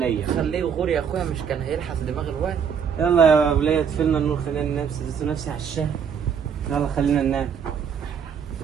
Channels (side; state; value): left; quieter; 7.2 dB